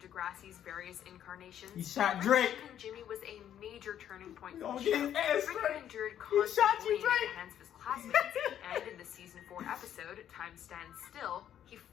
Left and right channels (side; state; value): right; quieter; 10.3 dB